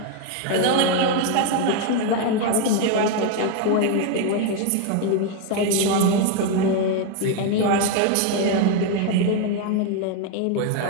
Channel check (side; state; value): both; different; correlation 0.01